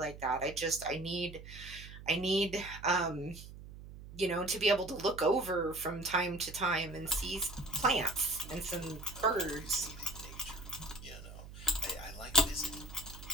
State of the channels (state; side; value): noise; right; hum, 14 dB below the sound